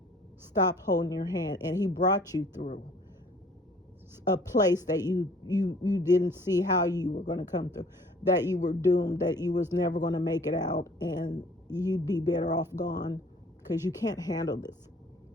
stopped holding your hand, and he brought you through a place that you didn't see how you were going to come through, that you were doomed, that you was never going to make it out, and you'd be better off gone because you can't handle this.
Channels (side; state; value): both; normal; correlation 0.54